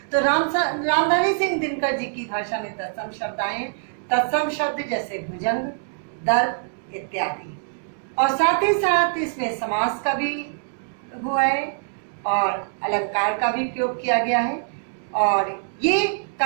तो रामधारी सिंह दिनकर जी की भाषा में तत्सम शब्द आए। तत्सम शब्द जैसे भुजंग, दर्प इत्यादि। और साथ ही साथ इसमें समास का भी हुआ है और अलंकार का भी प्रयोग किया गया है। और ये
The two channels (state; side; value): silent; left; digital silence